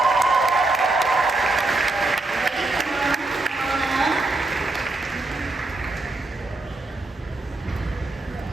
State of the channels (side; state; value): left; quieter; 3.1 dB